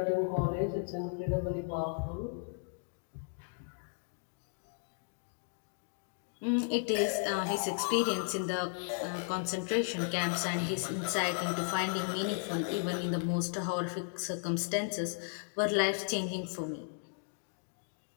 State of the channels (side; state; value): right; silent; digital silence